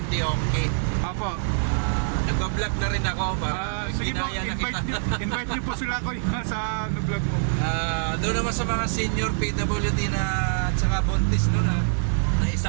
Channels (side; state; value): left; silent; digital silence